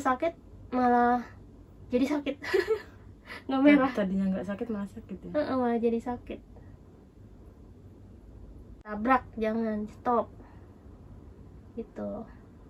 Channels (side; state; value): both; identical; correlation 1.00